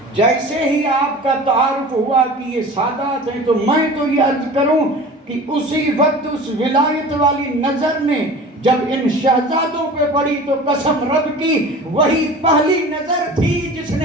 جیسے ہی آپ کا تعارف ہوا کہ یہ سادات ہیں، تو میں تو یہ عرض کروں کہ اسی وقت اس ولایت والی نظر نے جب ان شہزادوں پہ پڑی تو قسم رب کی وہی پہلی نظر تھی جس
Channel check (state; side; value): normal; both; correlation 0.39